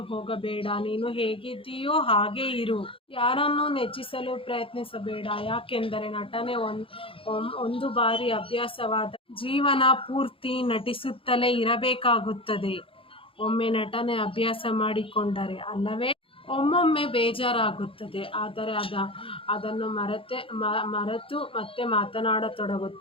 ಹೋಗಬೇಡ. ನೀನು ಹೇಗಿದ್ದೀಯೋ ಹಾಗೇ ಇರು. ಯಾರನ್ನೂ ನೆಚ್ಚಿಸಲು ಪ್ರಯತ್ನಿಸಬೇಡ. ಯಾಕೆಂದರೆ ನಟನೆ ಒಂದು ಬಾರಿ ಅಭ್ಯಾಸವಾದ ಜೀವನ ಪೂರ್ತಿ ನಟಿಸುತ್ತಲೇ ಇರಬೇಕಾಗುತ್ತದೆ. ಒಮ್ಮೆ ನಟನೆ ಅಭ್ಯಾಸ ಮಾಡಿಕೊಂಡರೆ ಅಲ್ಲವೇ ಒಮ್ಮೊಮ್ಮೆ ಬೇಜಾರಾಗುತ್ತದೆ. ಆದರೆ ಅದನ್ನು ಮರೆತು ಮತ್ತೆ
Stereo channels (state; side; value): late; right; 0.26 ms